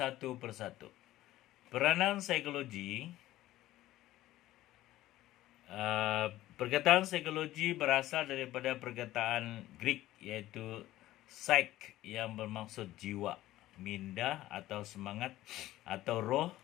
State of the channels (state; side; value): quieter; right; 15.3 dB